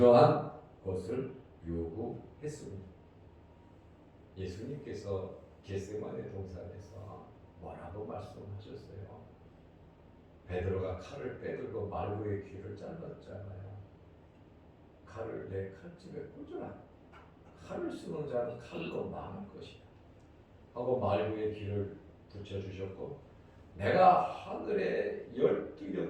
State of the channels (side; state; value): both; identical; correlation 1.00